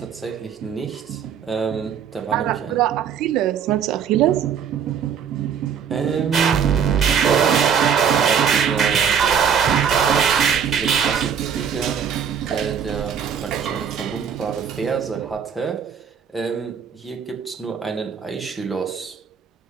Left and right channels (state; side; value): quieter; left; 7.5 dB